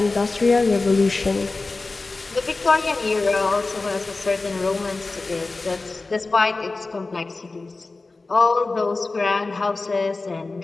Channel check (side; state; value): right; quieter; 3.5 dB